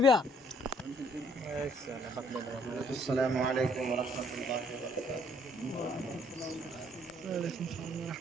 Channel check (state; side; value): normal; both; correlation 0.63